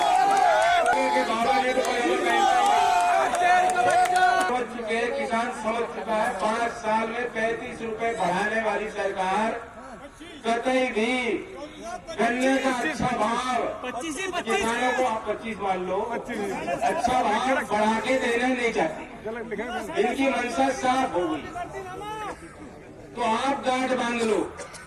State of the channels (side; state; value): both; identical; correlation 1.00